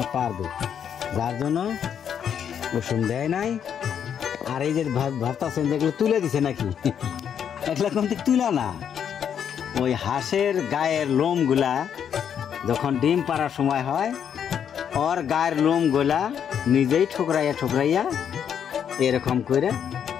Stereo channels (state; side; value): quieter; right; 8.4 dB